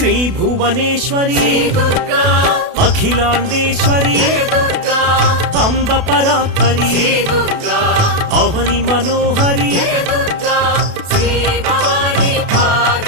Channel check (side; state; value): left; late; 32 ms